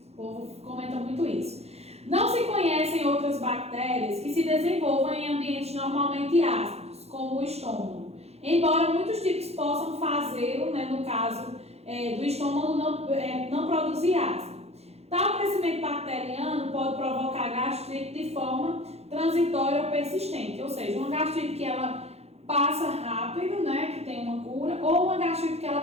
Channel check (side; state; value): left; late; 0.30 ms